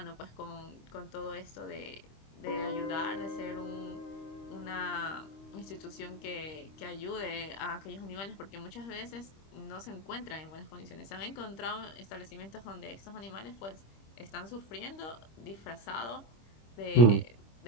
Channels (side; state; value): right; late; 26 ms